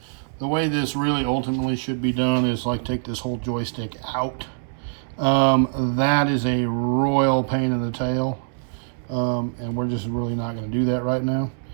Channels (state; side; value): silent; left; 63 dB below the other